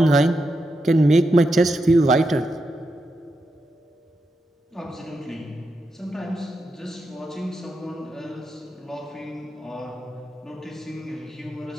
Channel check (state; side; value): normal; both; correlation 0.86